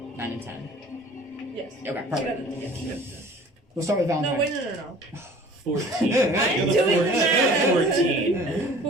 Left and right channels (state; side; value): normal; both; correlation 0.47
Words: 9 and 10. Yes. Okay, perfect. Yes. We'll start with Valentine. No, wait, no. 14. I'm doing the math. 14.